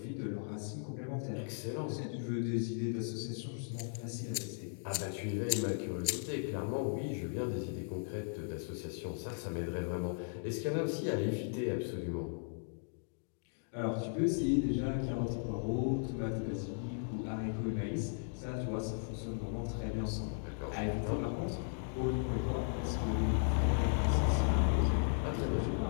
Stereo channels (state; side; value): silent; right; digital silence